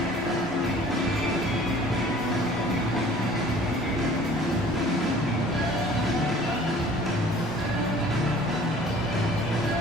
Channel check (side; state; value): both; normal; correlation 0.50